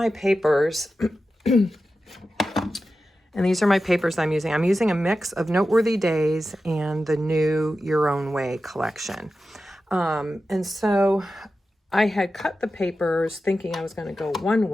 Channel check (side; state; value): both; normal; correlation 0.92